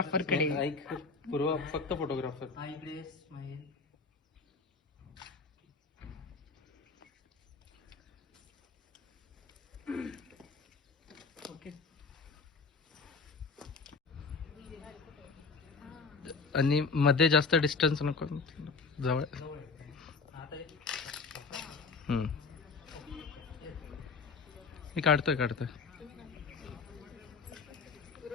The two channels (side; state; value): right; quieter; 4.6 dB